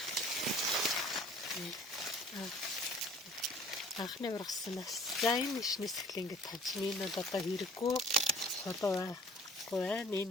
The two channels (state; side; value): normal; both; correlation 0.52